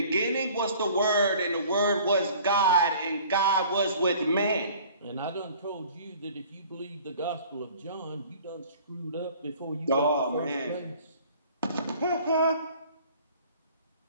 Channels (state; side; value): inverted; both; correlation -0.50